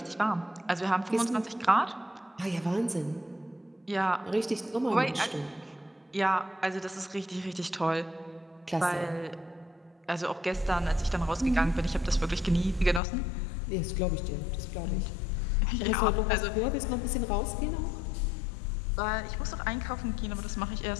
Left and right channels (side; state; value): right; drops out; at 13.0 s